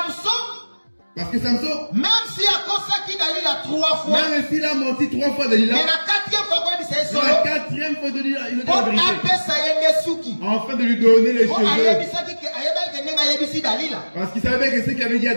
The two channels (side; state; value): both; inverted; correlation -1.00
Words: Parce que Samson, même si à cause qui Dalila 3 fois, même s'il a menti 3 fois Dalila, mais la 4e fois c'est ça. La 4e fois de dire il a dit la vérité. Afin de lui donner les cheveux. Parce qu'il savait que ce qu'il avait dit à